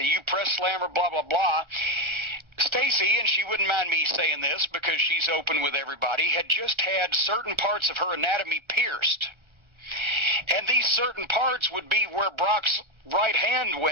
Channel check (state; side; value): late; left; 1.3 ms